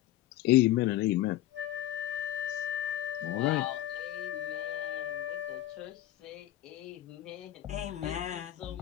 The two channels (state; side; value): quieter; right; 13.8 dB